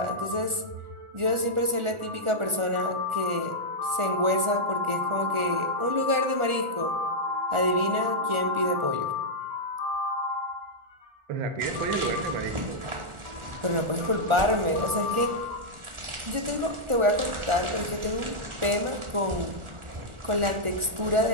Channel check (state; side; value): late; left; 1.4 ms